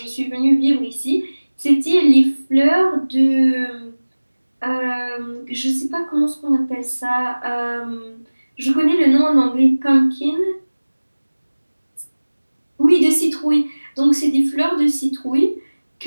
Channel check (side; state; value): both; inverted; correlation -1.00